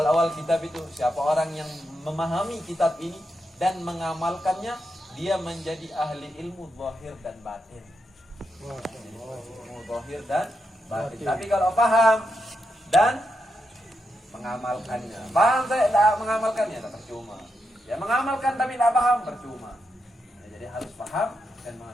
kitab itu, siapa orang yang memahami kitab ini dan mengamalkannya, dia menjadi ahli ilmu zahir dan batin. Ilmu zahir dan batin. Tapi kalau paham dan mengamalkannya, paham saya tidak mengamalkannya, tak percuma. Ya, mengamalkan tapi tidak paham, percuma. Ya, jadi harus paham dan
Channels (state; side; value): normal; both; correlation 0.84